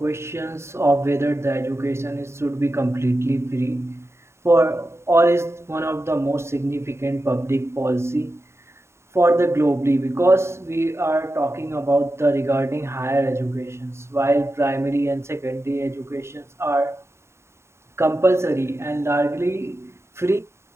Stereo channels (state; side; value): late; left; 0.13 ms